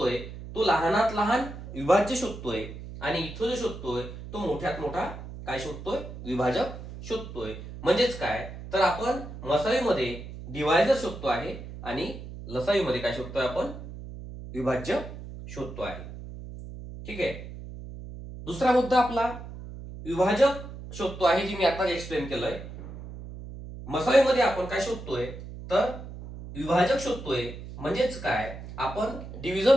तो लहानात लहान विभाज्य शोधतोय, आणि इथं जो शोधतोय तो मोठ्यात मोठा काय शोधतोय, विभाजक शोधतोय. म्हणजेच काय, तर आपण मसावीमध्ये डिवायझर शोधतो आहे आणि लसावीमध्ये काय शोधतोय, आपण विभाज्य शोधतो आहे. ठीक आहे. दुसरा मुद्दा आपला विभाजक शोधतो आहे, जी मी आता एक्सप्लेन केलंय. मसावीमध्ये आपण काय शोधतोय, तर विभाजक शोधतोय. म्हणजेच काय, आपण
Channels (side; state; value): right; noise; hum, 12 dB below the sound